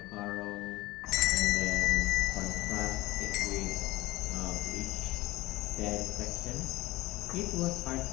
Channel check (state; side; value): quieter; right; 19.1 dB